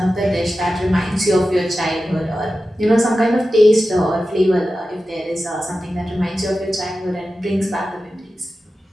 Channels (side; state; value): both; normal; correlation 0.93